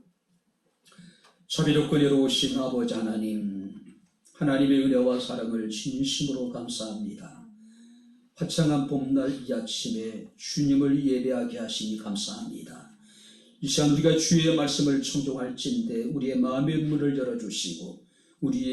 자비롭고 은혜로우신 아버지 하나님, 하나님의 은혜와 사랑을 진심으로 감사합니다. 화창한 봄날 이 아침에 주님을 예배하게 하시니 감사합니다. 이 시간 우리가 주의 말씀을 청종할진대 우리의 마음의 문을 열어주시고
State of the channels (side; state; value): both; identical; correlation 1.00